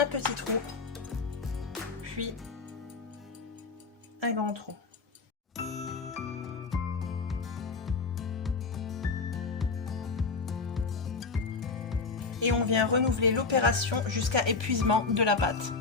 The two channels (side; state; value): right; quieter; 4.4 dB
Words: petit trou, puis un grand trou. Et on vient renouveler l'opération jusqu'à épuisement de la pâte.